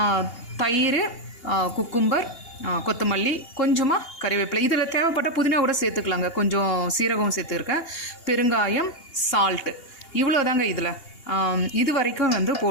தயிர், குக்கும்பர், கொத்தமல்லி, கொஞ்சமாக கறிவேப்பிலை, இதில் தேவைப்பட்ட புதினா கூட சேர்த்துக்கலாங்க. கொஞ்சம் சீரகம் சேர்த்துருக்கேன், பெருங்காயம், சால்ட்டு, இவ்வளோ தாங்க இதில். இது வரைக்கும் வந்து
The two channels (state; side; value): late; right; 2.8 ms